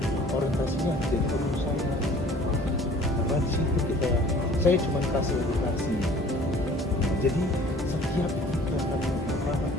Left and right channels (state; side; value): normal; both; correlation 0.50